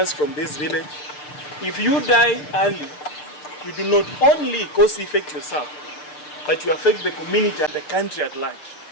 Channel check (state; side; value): late; right; 6.7 ms